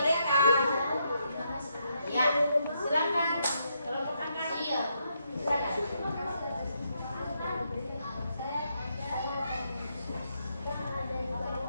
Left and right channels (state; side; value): inverted; both; correlation -0.78